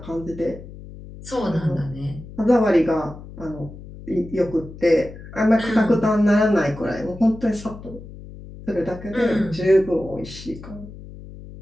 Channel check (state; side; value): noise; left; hum, 15 dB below the sound